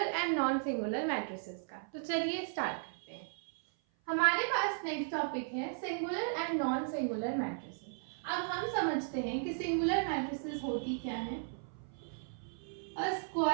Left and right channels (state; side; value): silent; left; 54 dB below the other